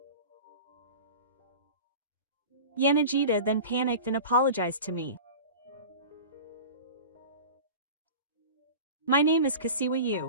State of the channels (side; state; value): both; inverted; correlation -0.35